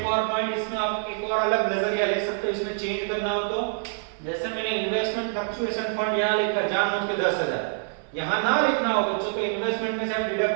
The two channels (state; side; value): silent; left; 59 dB below the other